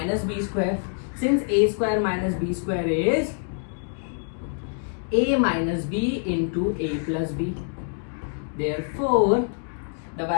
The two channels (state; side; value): silent; right; digital silence